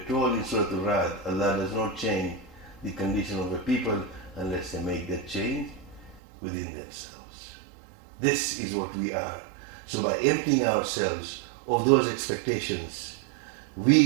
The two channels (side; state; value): left; drops out; at 6.2 s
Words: in Surah Al-Ra'd, Allah does not change the condition of a people unless they make that change within themselves. This is what we are. So by emptying ourselves of those expectations,